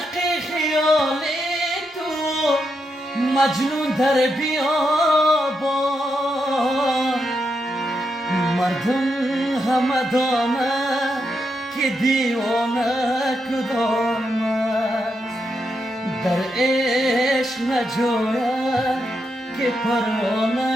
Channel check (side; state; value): both; normal; correlation 0.83